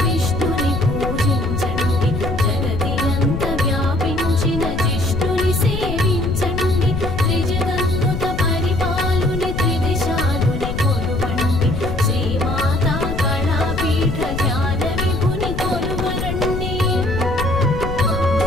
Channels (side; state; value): left; noise; rumble, 4 dB below the sound